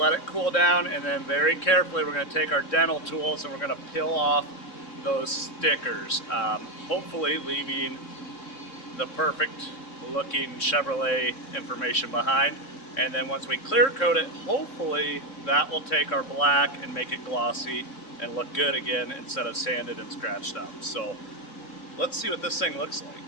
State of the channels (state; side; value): late; right; 3.6 ms